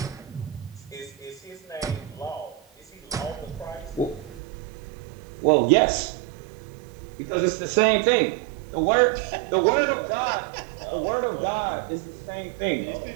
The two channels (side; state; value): left; drops out; at 4.4 s